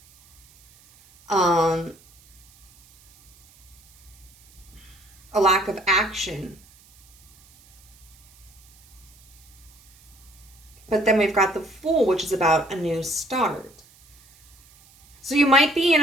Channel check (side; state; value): right; noise; hiss, 27 dB below the sound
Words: A lack of action. But then we've got the Fool, which is about a new start. So you might be in